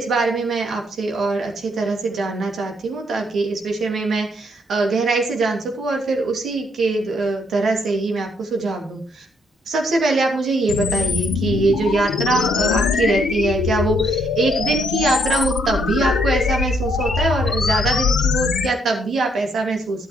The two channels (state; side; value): normal; both; correlation 0.71